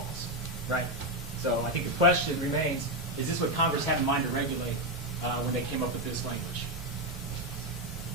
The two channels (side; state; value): both; normal; correlation 0.06